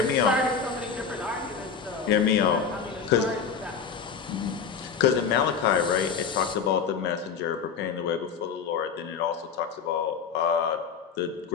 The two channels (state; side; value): quieter; right; 6.3 dB